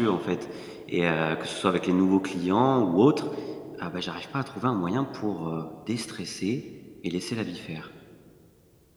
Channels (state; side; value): identical; both; correlation 1.00